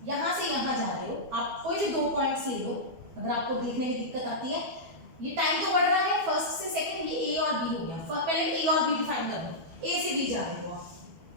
यहां से यहां जा रहे हो आप, कोई भी दो पॉइंट्स ले लो, अगर आपको देखने में दिक्कत आती है। ये टाइम तो बढ़ रहा है, फर्स्ट से सेकंड, ये ए और बी हो गया। पहले ए और बी डिफाइन कर लो, ए से बी जा रहे हो आप,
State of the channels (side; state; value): left; late; 12 ms